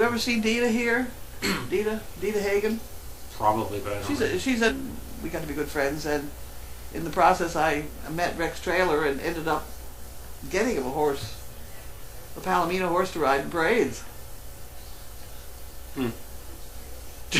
ever seen Dita here? Dita Hagen. Probably, but I don't know. We got to be good friends, and in the process, I met Rex Trailer and ended up getting him a Palomino horse to ride in parades.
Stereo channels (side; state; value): both; identical; correlation 1.00